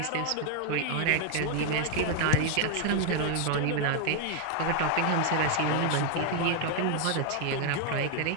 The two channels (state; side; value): different; both; correlation 0.00